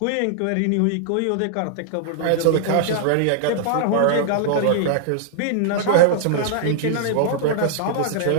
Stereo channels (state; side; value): different; both; correlation -0.01